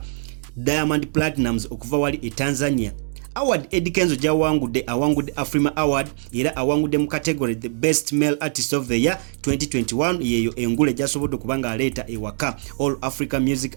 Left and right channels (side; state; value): left; silent; digital silence